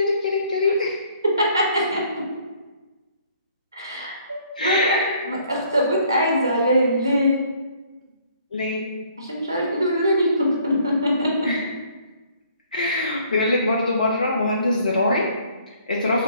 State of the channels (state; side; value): inverted; both; correlation -0.61